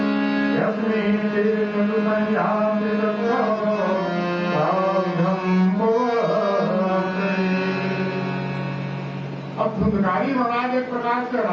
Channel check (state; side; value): identical; both; correlation 1.00